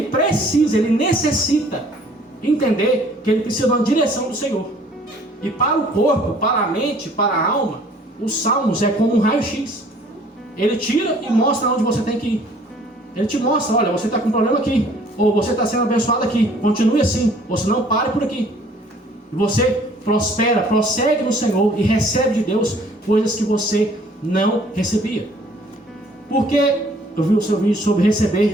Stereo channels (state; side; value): normal; both; correlation 0.56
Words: precisa, ele necessita entender que ele precisa de uma direção do Senhor. E para o corpo, para a mente, para a alma, os salmos é como um raio-x. Ele tira e mostra onde você tem que ir. Ele te mostra, olha, você está com um problema aqui, ou você está sendo abençoado aqui, continue assim, ou se não, pare por aqui. E você prospera, prossegue no Senhor e recebe de Deus coisas que você não recebia. Porque eu vi o seu vídeo sobre